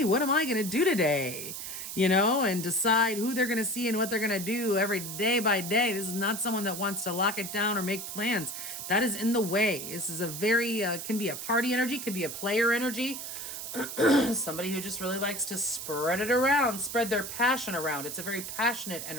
what am I going to do today? And decide who they're going to see and what they're going to do every day by day. This is not someone that wants to lock it down or make plans. That is in the way. This is a very, can be a party energy, could be a player energy. Somebody who just really likes to spread it around, spread their passion around. It's a very passionate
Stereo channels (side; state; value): right; noise; hiss, 7 dB below the sound